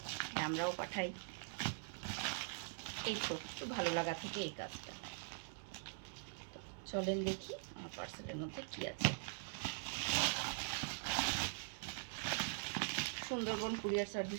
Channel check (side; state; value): left; silent; digital silence